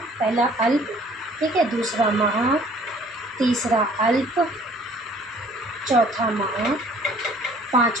पहला अल्प, ठीक है, दूसरा महा, तीसरा अल्प, चौथा महा,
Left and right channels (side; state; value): both; normal; correlation 0.55